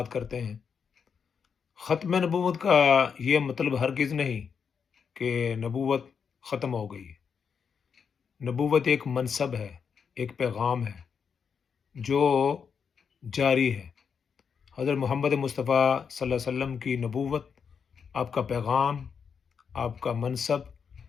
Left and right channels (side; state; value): right; quieter; 6.5 dB